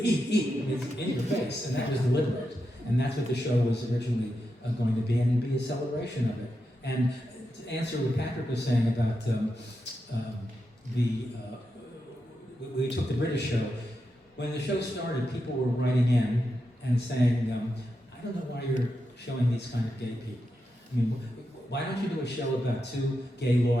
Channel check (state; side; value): normal; both; correlation 0.87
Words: eat, it's in your face, and that was deliberate. And that's what the show was originally going to be, and be a celebration of it. And to answer what Patrick was saying about we took the British show. When the show started, people were writing in and saying, I don't know why you're showing these kind of gay people. I mean, why don't you do a show about two gay